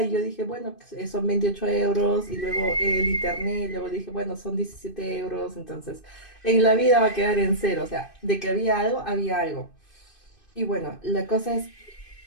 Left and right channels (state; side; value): late; right; 2.5 ms